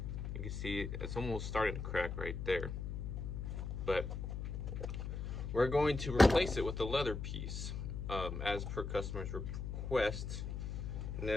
you can see it's almost starting to crack right there. But we're going to replace it with a leather piece, as per customer's request.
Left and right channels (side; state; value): left; noise; hum, 4 dB below the sound